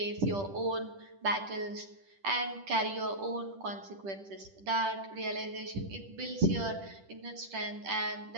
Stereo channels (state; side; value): late; left; 10 ms